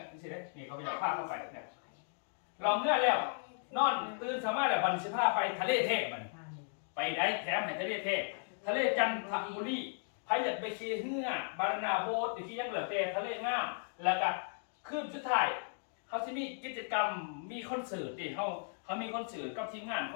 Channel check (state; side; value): silent; right; digital silence